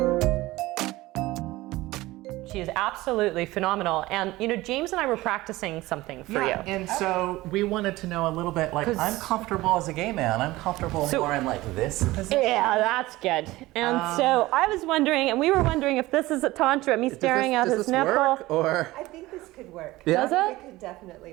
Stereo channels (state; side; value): quieter; left; 18.6 dB